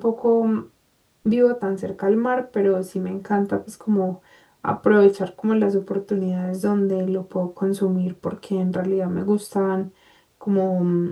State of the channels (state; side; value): identical; both; correlation 1.00